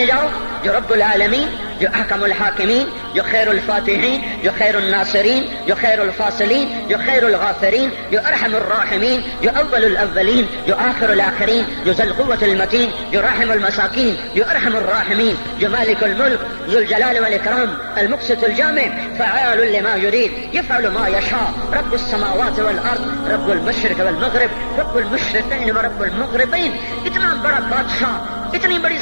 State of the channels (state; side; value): inverted; both; correlation -1.00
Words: جاؤ جو رب العالمین، جو احکم الحاکمین، جو خیر الفاتحین، جو خیر الناصرین، جو خیر الفاصلین، جو خیر الغافرین، جو ارحم الراحمین، جو اول الاولین، جو آخر الاخرین، جو ذو القوة المتین، جو راحم المساکین، جو ارحم الراحمین، جو مالک الملک ذو الجلال والاکرام المقسط الجامع فعال لما يريد يفعل ما يشاء رب السماوات والارض رب المشرق والمغرب رب المشرقین ورب المغربین. اتنا بڑا بادشاہ، اتنی بڑی